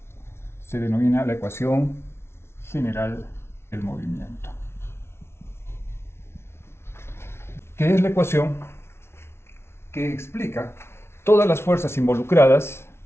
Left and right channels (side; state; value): right; late; 0.12 ms